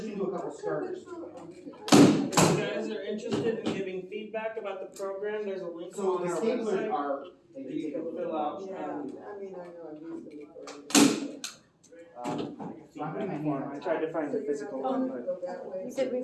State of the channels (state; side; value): identical; both; correlation 1.00